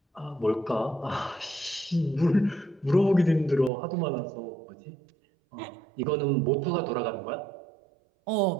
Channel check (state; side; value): drops out; left; at 3.7 s